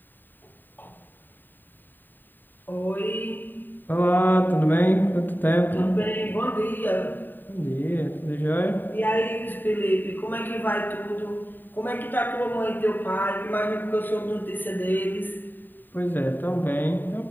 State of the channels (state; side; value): late; right; 0.091 ms